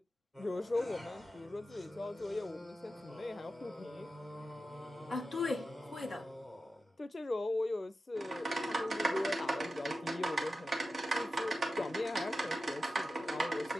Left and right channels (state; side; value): normal; both; correlation 0.92